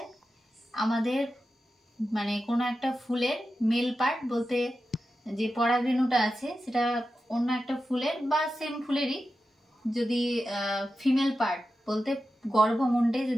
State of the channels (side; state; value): both; normal; correlation 0.91